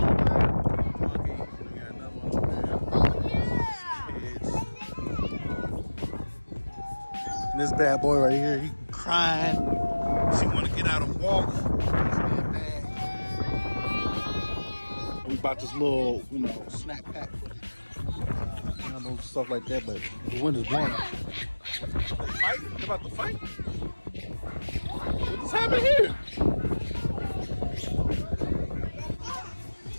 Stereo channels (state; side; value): inverted; both; correlation -1.00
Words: Monkey. We got another one over there. Kids. And this bad boy right here, he crying. She want to get out and walk. He's being bad. We bought this little, snack pack. Animals, stuff like that, but the wind is blowing. Fight? They about to fight? What's happening here?